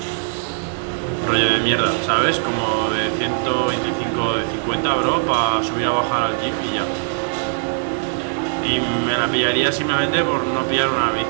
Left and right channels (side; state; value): left; silent; digital silence